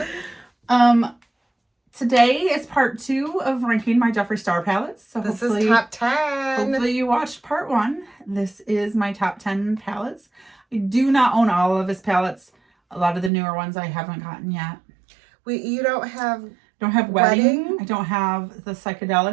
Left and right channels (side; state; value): left; drops out; at 13.3 s